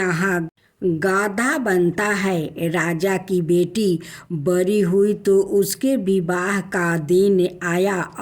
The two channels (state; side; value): identical; both; correlation 1.00